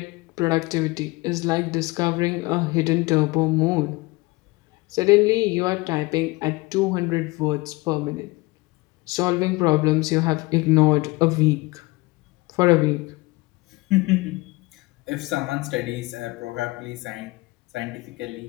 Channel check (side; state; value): right; quieter; 23.1 dB